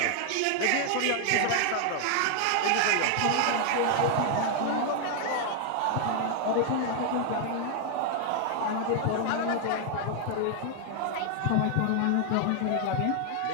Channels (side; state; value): both; different; correlation 0.00